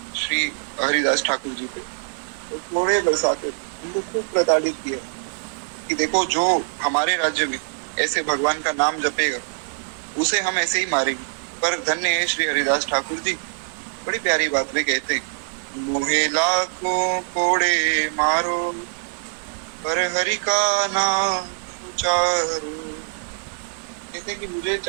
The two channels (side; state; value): left; silent; digital silence